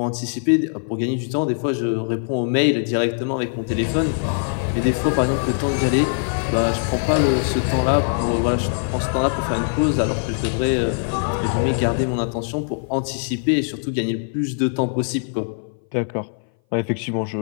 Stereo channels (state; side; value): silent; right; 59 dB below the other